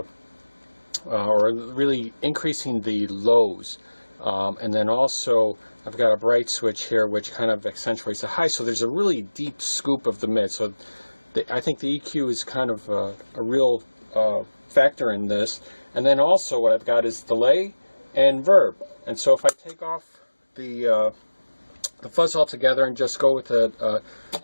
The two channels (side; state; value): both; inverted; correlation -1.00